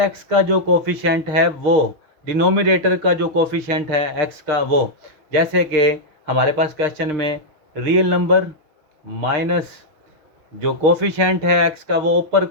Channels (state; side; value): late; left; 6.5 ms